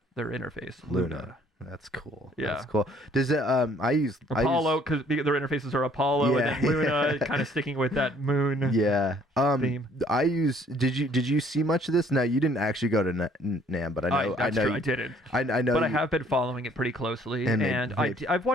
their interface. Luna. That's cool. Yeah. That's cool. Does it I use Apollo, because their interfaces are Apollo, and then Luna, kind of sticking with that moon theme. I use did you see much of this? No, you didn't actually go to NAMM, but I know I didn't. I know, but I have been following it pretty closely, and I've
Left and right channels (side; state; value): both; normal; correlation 0.60